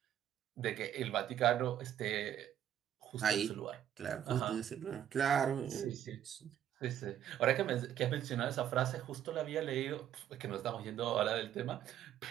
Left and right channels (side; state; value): left; quieter; 10.6 dB